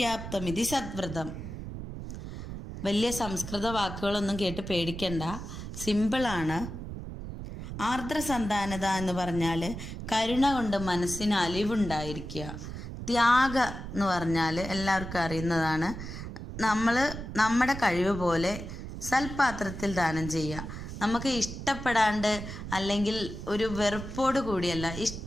സദ്വ്രതം. വലിയ സംസ്കൃത വാക്കുകളൊന്നും കേട്ട് പേടിക്കണ്ട, സിമ്പിളാണ്. ആർദ്രസന്താനത എന്ന് പറഞ്ഞാൽ കരുണ കൊണ്ട് മനസ്സിന് അലിവുണ്ടായിരിക്കുക. ത്യാഗ എന്ന് പറഞ്ഞാൽ എല്ലാവർക്കും അറിയുന്നതാണ്, നമ്മുടെ കഴിവ് പോലെ സൽപാത്രത്തിൽ ദാനം ചെയ്യുക. നമുക്ക് ഇഷ്ടപ്പെടാണ്ട് അല്ലെങ്കിൽ ഒരു വെറുപ്പോട് കൂടിയല്ല,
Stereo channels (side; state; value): right; noise; rumble, 8 dB below the sound